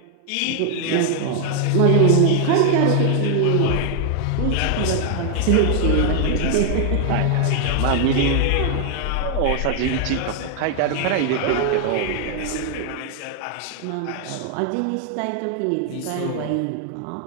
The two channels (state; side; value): different; both; correlation 0.00